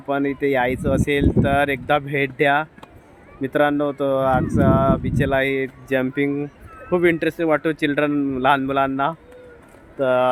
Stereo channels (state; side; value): identical; both; correlation 1.00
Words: इथे यायचं असेल तर एकदा भेट द्या मित्रांनो. तो आक्सा बीचला हे जम्पिंग खूप इंटरेस्टिंग वाटतो लहान मुलांना.